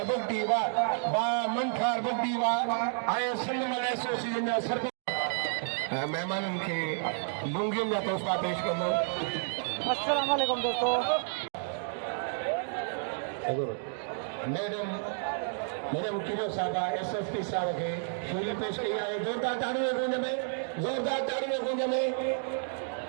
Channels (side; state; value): left; silent; digital silence